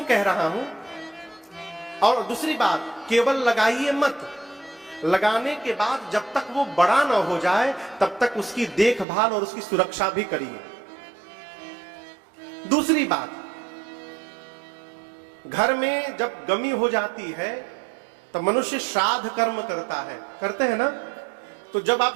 कह रहा हूं? और दूसरी बात, केवल लगाइए मत, लगाने के बाद जब तक वो बड़ा ना हो जाए तब तक उसकी देखभाल और उसकी सुरक्षा भी करिए। दूसरी बात, घर में जब गमी हो जाती है तो मनुष्य श्राद्ध कर्म करता है, करते हैं ना? तो जब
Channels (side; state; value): left; drops out; at 9.1 s